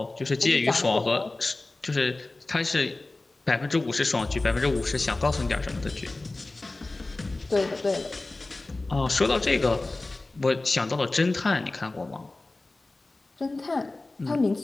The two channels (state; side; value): quieter; right; 3.1 dB